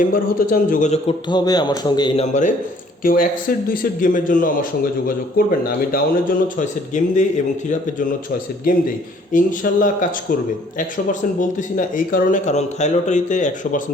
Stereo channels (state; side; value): normal; both; correlation 0.59